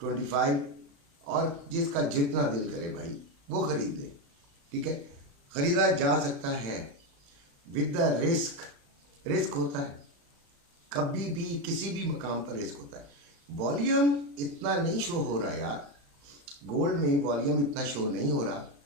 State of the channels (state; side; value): late; left; 35 ms